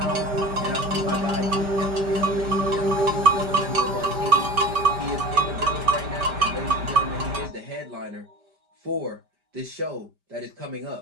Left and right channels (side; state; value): left; late; 5.1 ms